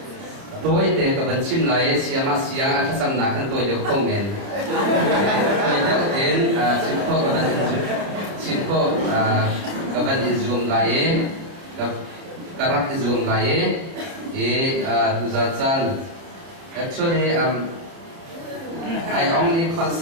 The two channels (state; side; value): late; left; 30 ms